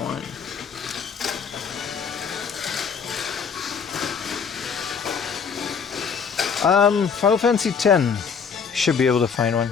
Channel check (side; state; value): right; quieter; 6.2 dB